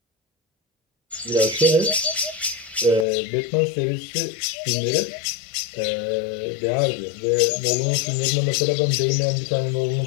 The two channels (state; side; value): drops out; right; at 3.1 s